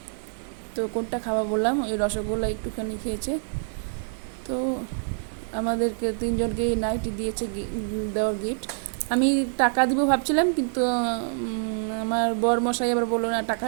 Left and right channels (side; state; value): left; silent; digital silence